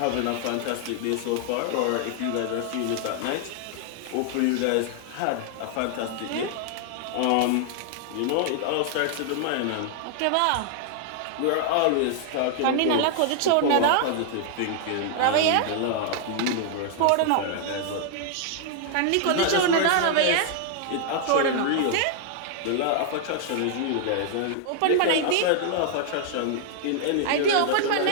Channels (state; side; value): different; both; correlation 0.00